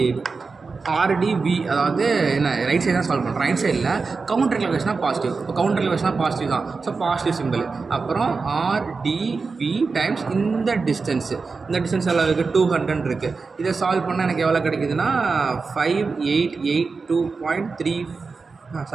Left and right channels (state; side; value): quieter; left; 4.5 dB